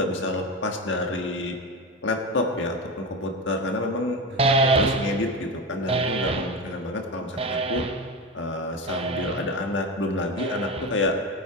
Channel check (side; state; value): both; normal; correlation 0.21